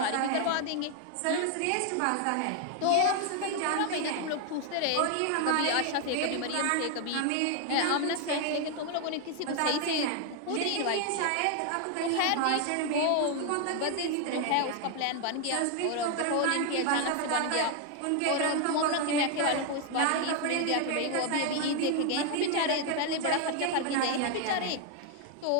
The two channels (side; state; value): both; different; correlation 0.00